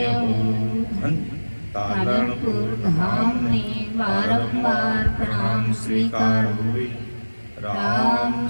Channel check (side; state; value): both; inverted; correlation -1.00